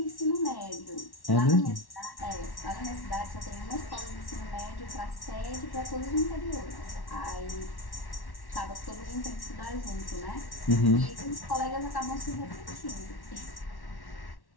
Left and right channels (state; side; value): late; right; 1.1 ms